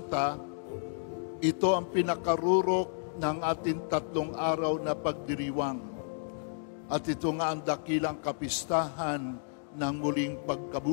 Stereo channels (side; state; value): right; silent; digital silence